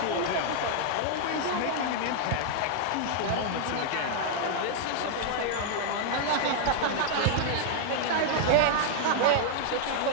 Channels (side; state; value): both; different; correlation 0.00